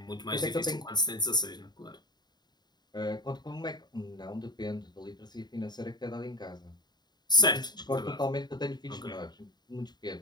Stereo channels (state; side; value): late; right; 0.20 ms